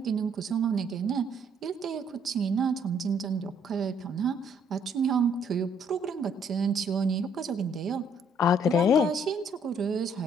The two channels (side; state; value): both; normal; correlation 0.66